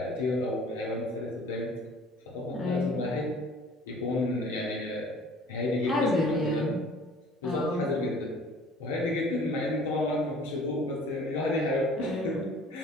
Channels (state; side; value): normal; both; correlation 0.50